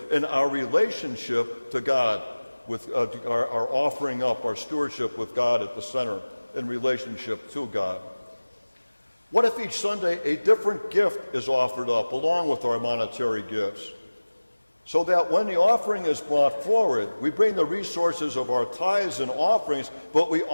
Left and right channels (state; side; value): inverted; both; correlation -1.00